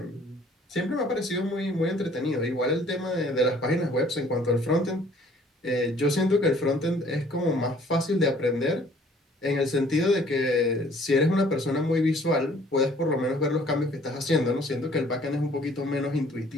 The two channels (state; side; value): normal; both; correlation 0.57